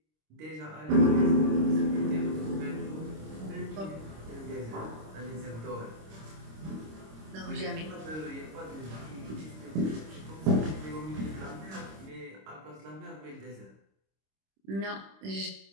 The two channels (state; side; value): late; left; 26 ms